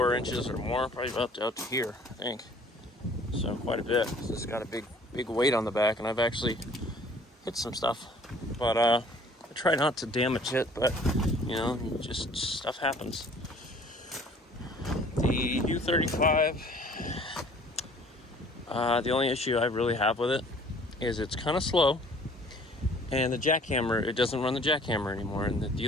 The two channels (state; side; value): normal; both; correlation 0.53